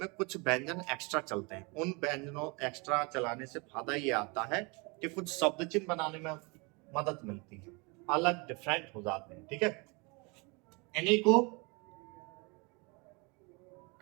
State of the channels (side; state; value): left; quieter; 29.5 dB